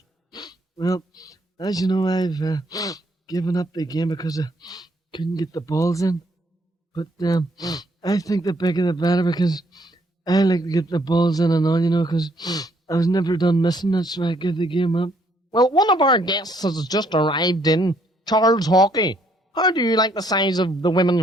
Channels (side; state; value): both; normal; correlation 0.68